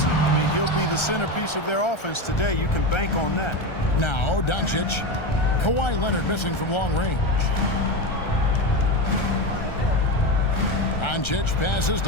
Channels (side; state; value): right; late; 1.3 ms